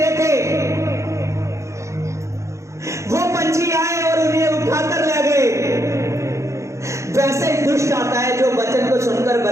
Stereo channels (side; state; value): left; late; 0.14 ms